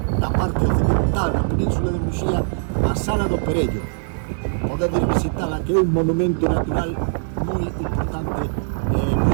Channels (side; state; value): left; silent; 65 dB below the other